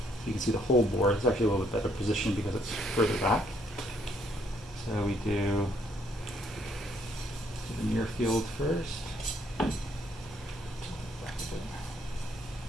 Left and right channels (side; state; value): both; normal; correlation 0.69